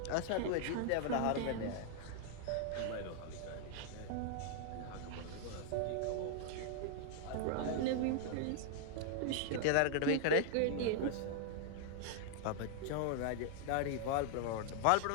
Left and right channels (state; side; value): different; both; correlation 0.00